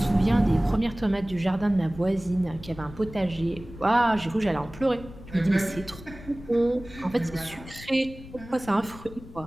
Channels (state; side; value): noise; left; rumble, 16 dB below the sound